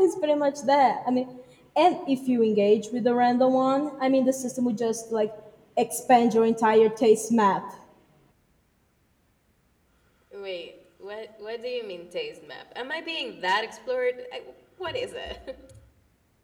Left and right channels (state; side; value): identical; both; correlation 1.00